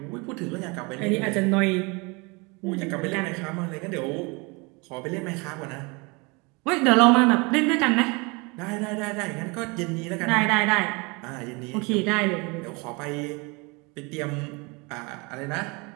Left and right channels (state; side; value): quieter; left; 28.2 dB